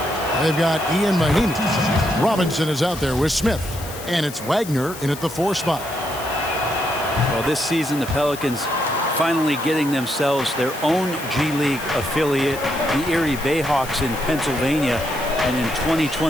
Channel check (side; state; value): left; noise; hiss, 14 dB below the sound